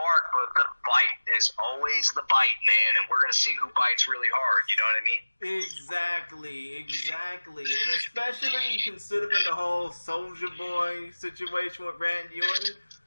but the bite is always the bite, man. And we're going to see who bites really hard. You know what I mean? Exactly. And especially considering the whole Soulja Boy situation with Randy Orton,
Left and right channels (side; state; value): both; inverted; correlation -1.00